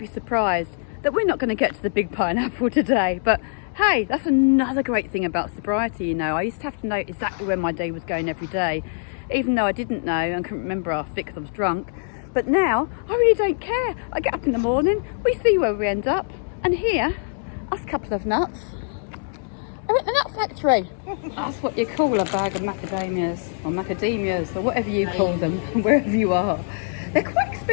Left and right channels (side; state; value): right; silent; 63 dB below the other